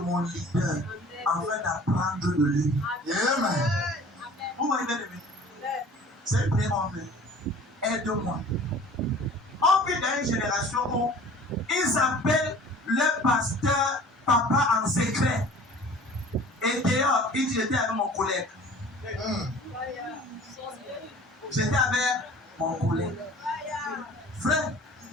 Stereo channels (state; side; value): normal; both; correlation 0.46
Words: leader afin d'apprendre de lui. Amen. Vous voyez bien aimé. C'est une prière en fait. Aide-moi. On vit dans une génération où ils appellent le pasteur papa en secret. Et d'ailleurs, il dit j'étais avec mon collègue. J'étais avec mon collègue. Frère,